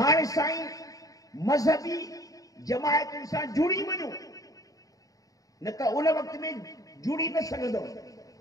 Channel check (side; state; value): right; late; 0.17 ms